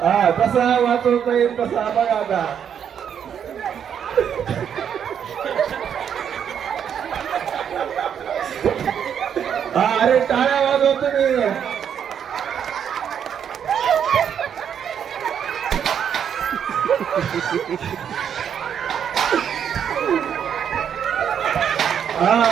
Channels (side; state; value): left; quieter; 8.4 dB